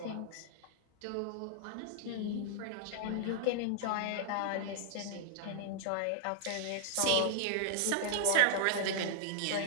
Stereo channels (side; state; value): both; different; correlation -0.01